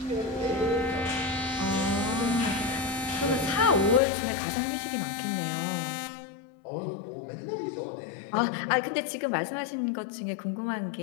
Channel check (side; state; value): right; drops out; at 4.0 s